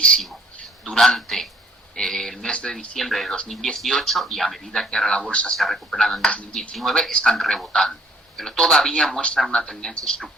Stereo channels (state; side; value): normal; both; correlation 0.60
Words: durante el mes de diciembre de 2018 y a medida que ahora la bolsa se ha recuperado en 2019, están rebotando. Pero todavía muestran una tendencia